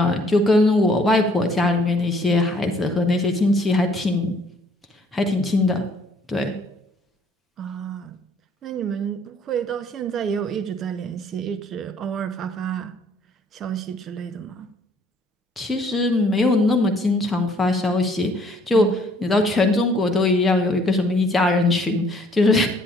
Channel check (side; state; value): both; normal; correlation 0.61